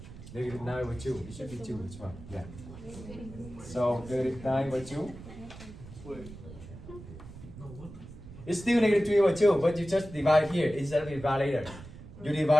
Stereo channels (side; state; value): right; noise; rumble, 15 dB below the sound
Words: Negative 9 over 2. It should be 2 as well. Yeah. So negative 9 over 2. It's still negative 3 over 2, but you just divide here instead of divide later. You